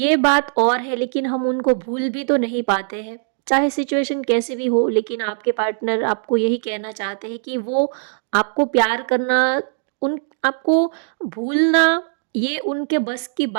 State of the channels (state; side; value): silent; left; digital silence